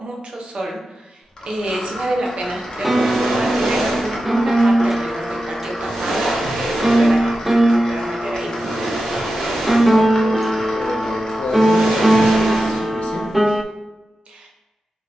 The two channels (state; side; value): normal; both; correlation 0.92